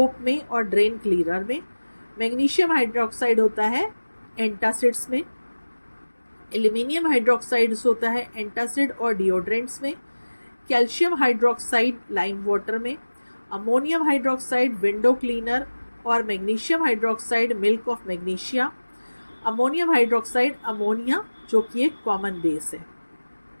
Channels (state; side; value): inverted; both; correlation -1.00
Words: में और ड्रेन क्लीनर में। मैग्नीशियम हाइड्रोक्साइड होता है एंटासिड्स में। एल्यूमिनियम हाइड्रोक्साइड होता है एंटासिड और डिओड्रेंट्स में। कैल्शियम हाइड्रोक्साइड लाइम वाटर में। अमोनियम हाइड्रोक्साइड विंडो क्लीनर और magnesium hydroxide milk of magnesia. Ammonium hydroxide ammonia जो कि एक कॉमन बेस है।